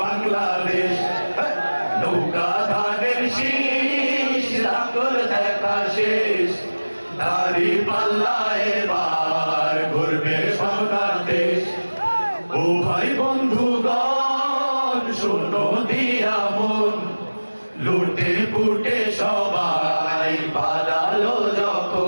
নৌকা ধানের শীষ লাঙ্গল দেখা শেষ দাড়ি পাল্লা এবার ঘুরবে বাংলাদেশ। ও ভাই বন্ধুগণ শোনো দিয়া মন লুটে পুটে সবাই পালালো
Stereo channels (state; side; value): inverted; both; correlation -1.00